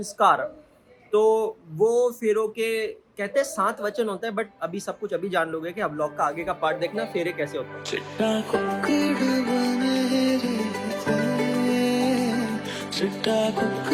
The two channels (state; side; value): identical; both; correlation 1.00